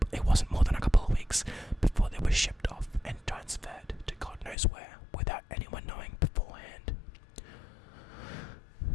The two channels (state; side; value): drops out; right; at 4.5 s